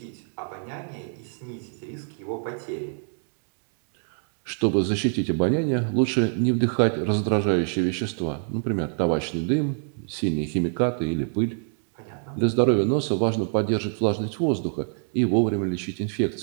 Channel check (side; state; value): left; silent; 61 dB below the other